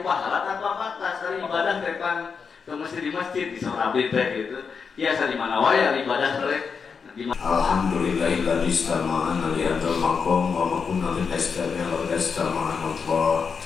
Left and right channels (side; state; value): right; quieter; 5.7 dB